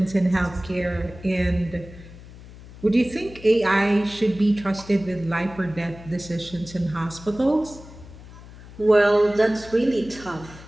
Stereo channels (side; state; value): left; noise; hum, 18 dB below the sound